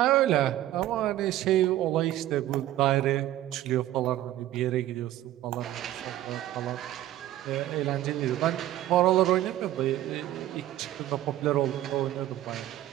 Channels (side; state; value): left; quieter; 13.9 dB